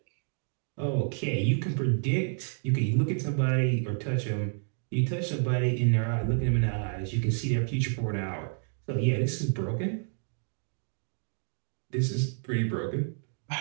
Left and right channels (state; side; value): silent; left; 58 dB below the other